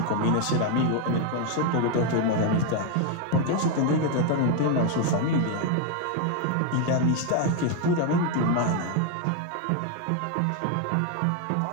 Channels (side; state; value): both; different; correlation 0.01